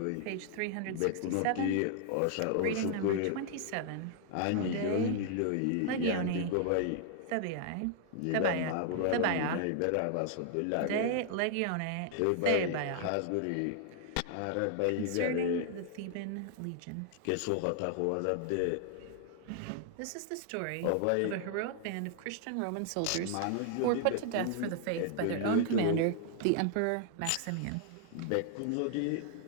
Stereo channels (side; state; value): both; different; correlation 0.00